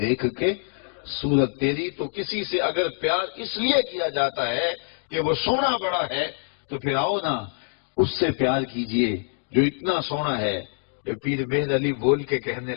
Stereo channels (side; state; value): right; silent; 62 dB below the other